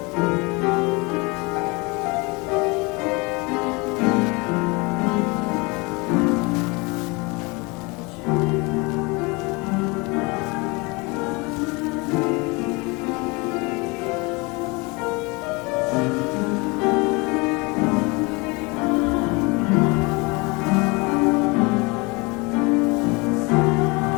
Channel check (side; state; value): right; quieter; 27.2 dB